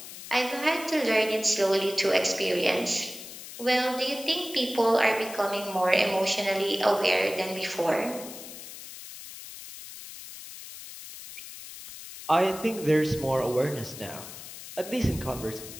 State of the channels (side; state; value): left; noise; hiss, 13 dB below the sound